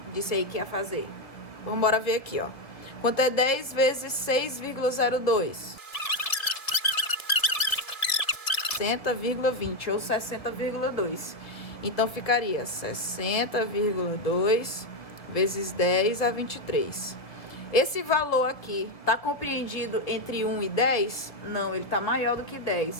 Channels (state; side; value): late; right; 1.7 ms